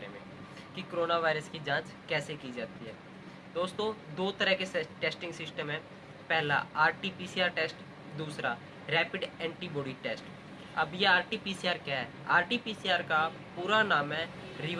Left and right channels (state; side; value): identical; both; correlation 1.00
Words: में कि कोरोना वायरस की जांच कैसे की जाती है। दोस्तों, दो तरह के टेस्टिंग सिस्टम है। पहला RT-PCR टेस्ट, दूसरा रैपिड एंटीबॉडी टेस्ट। अब ये RT-PCR क्या है? RT-PCR का पूरा नाम है